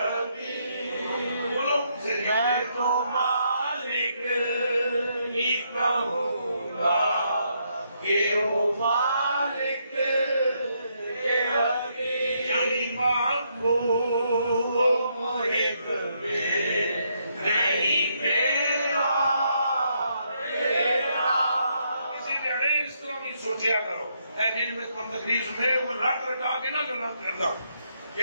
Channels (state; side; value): inverted; both; correlation -0.76